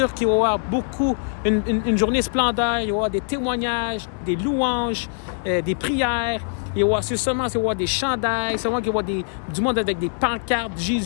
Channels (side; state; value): right; silent; digital silence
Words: qu'il va y avoir beaucoup, une journée splendeur. Il va y avoir des témoignages, des louanges, des prières. Il va y avoir des chandails. C'est vraiment qu'il va y avoir du monde avec des pancartes,